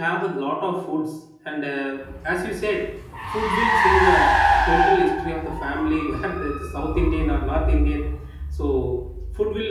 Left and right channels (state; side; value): identical; both; correlation 1.00